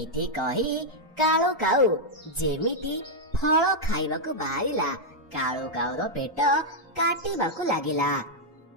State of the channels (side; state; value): both; normal; correlation -0.03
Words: କହି କାଳୁ କାଉ ଯେମିତି ଫଳ ଖାଇବାକୁ ବାହାରିଲା, କାଳୁ କାଉର ପେଟ କାଟିବାକୁ ଲାଗିଲା।